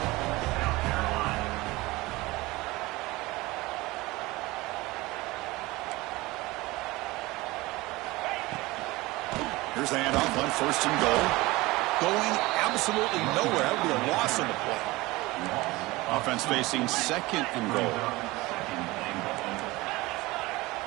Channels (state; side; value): quieter; left; 20.8 dB